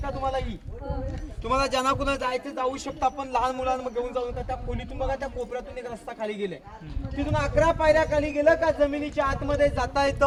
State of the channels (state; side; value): identical; both; correlation 1.00